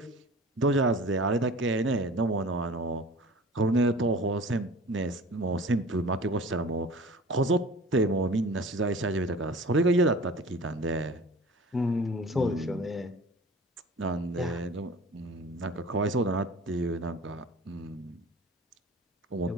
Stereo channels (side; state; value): both; normal; correlation 0.42